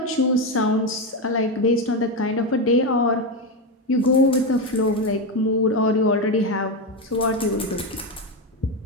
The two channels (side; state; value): both; normal; correlation 0.12